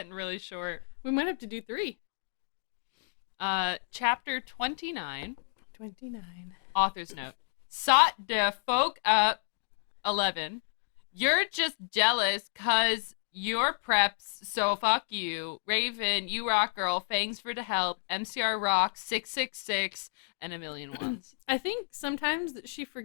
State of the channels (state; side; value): silent; right; digital silence